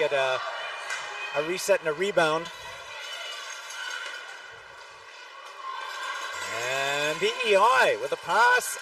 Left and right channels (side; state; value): both; identical; correlation 1.00